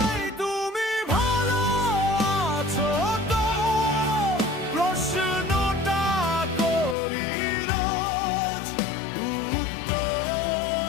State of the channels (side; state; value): right; drops out; at 7.0 s